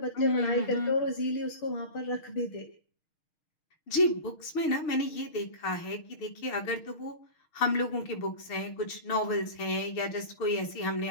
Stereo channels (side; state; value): right; late; 6.4 ms